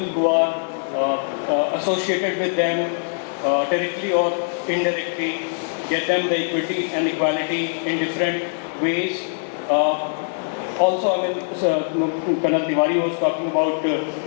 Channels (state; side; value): silent; right; 64 dB below the other